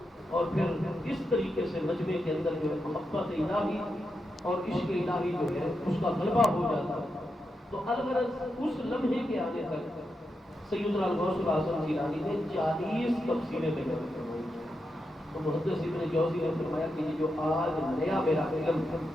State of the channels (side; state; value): both; normal; correlation 0.86